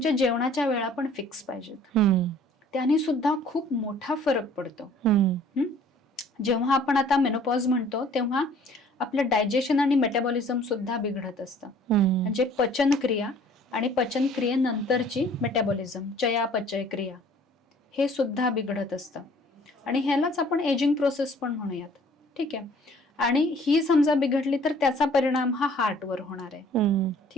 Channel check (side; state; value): both; normal; correlation 0.54